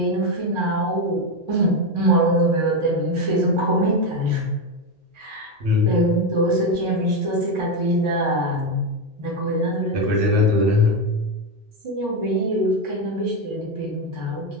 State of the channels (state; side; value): normal; both; correlation 0.10